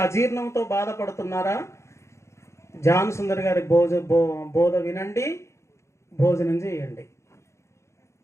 అజీర్ణంతో బాధపడుతున్నారా? జాన్ సుందర్ గారి బోధ వినండి, భోజనం చేయండి.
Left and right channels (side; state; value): right; late; 0.14 ms